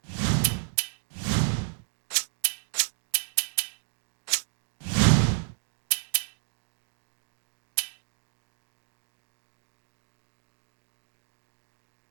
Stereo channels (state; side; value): silent; left; digital silence